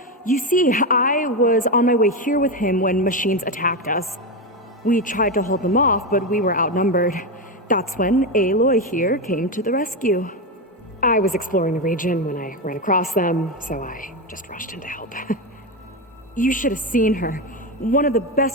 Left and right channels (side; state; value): both; normal; correlation 0.12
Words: You see, I was on my way here with him when machines attacked us. We tried to hold them off, but we were outnumbered. That's when Aloy here came to the rescue. I was exploring the region when I ran across them, so I just rushed in to help. You should have seen her. One of the